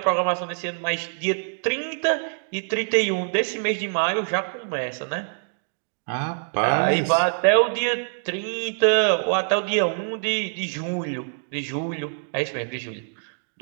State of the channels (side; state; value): left; silent; digital silence